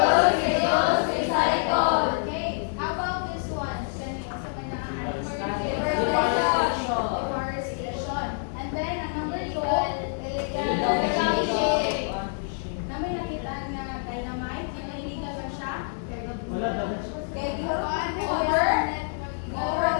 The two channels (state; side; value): silent; right; digital silence